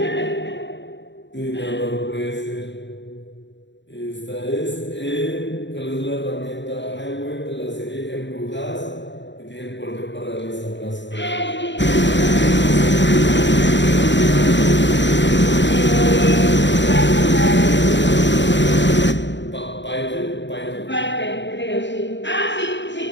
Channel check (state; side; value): late; right; 0.53 ms